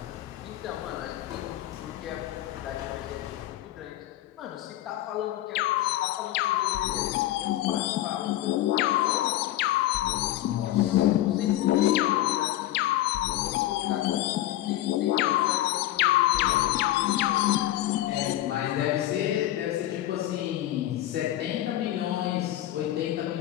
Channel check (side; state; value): right; quieter; 14.4 dB